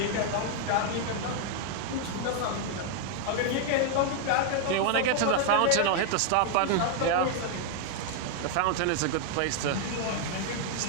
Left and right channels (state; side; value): different; both; correlation 0.00